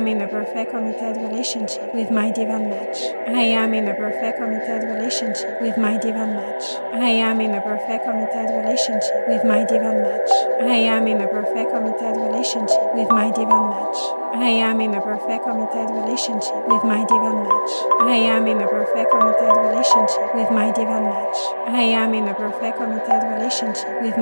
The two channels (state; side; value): inverted; both; correlation -1.00